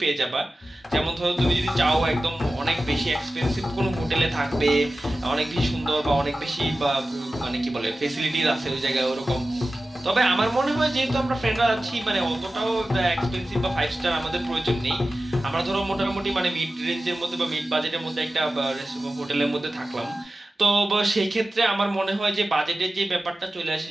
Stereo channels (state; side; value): normal; both; correlation 0.95